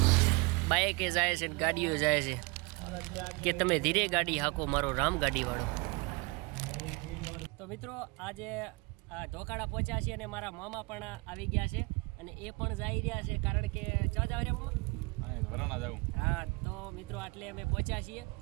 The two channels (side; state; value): left; quieter; 27.1 dB